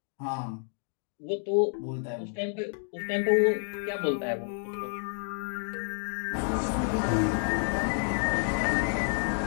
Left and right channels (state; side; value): silent; right; 58 dB below the other